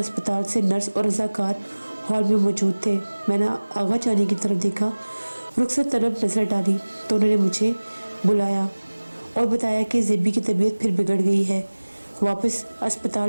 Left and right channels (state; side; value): inverted; both; correlation -1.00